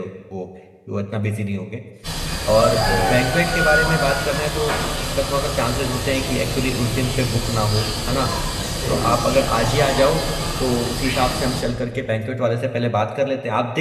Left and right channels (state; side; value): identical; both; correlation 1.00